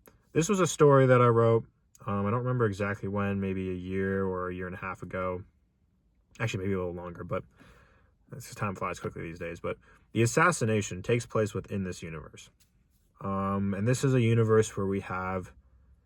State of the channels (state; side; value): identical; both; correlation 1.00